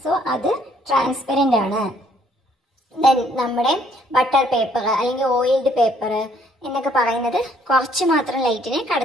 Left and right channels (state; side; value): normal; both; correlation 0.64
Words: സോ അത് ട്രാൻസ്പെറൻ്റ് ആണ്. ദെൻ നമ്മുടെ ബട്ടർ പേപ്പർ അല്ലെങ്കിൽ ഓയിൽഡ് പേപ്പർ എന്നൊക്കെ പറയുന്നത് കുറച്ച് മാത്രം ലൈറ്റിനെ